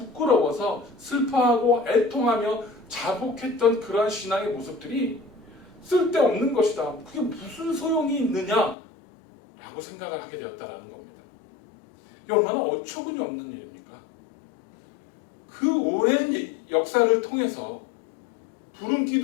슬퍼하고 애통하며 자복했던 그러한 신앙의 모습들이 쓸데없는 것이다. 그게 무슨 소용이 있느냐? 라고 생각을 하게 되었다는 겁니다. 이게 얼마나 어처구니 없는 일입니까? 그 오랜 역사를 통해서 구름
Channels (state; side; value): drops out; right; at 8.8 s